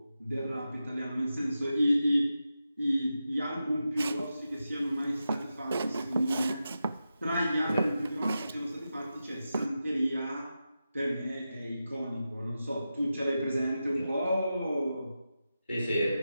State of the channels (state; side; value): inverted; both; correlation -0.90